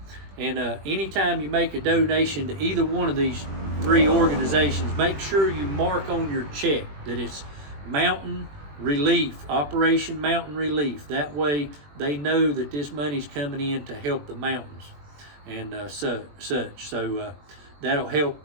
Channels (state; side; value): late; left; 21 ms